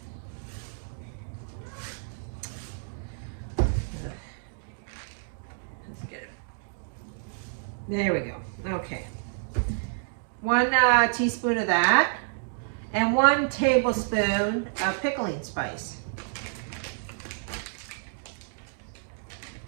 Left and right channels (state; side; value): silent; left; digital silence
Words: Let's get it. There we go. Okay. 1 teaspoon of that, and 1 tablespoon of pickling spice.